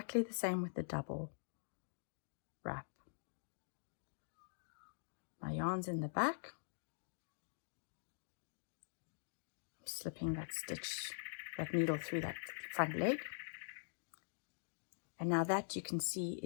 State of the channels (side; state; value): right; silent; digital silence